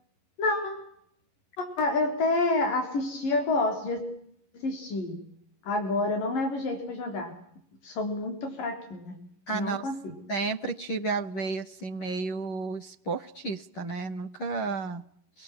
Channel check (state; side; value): late; right; 11 ms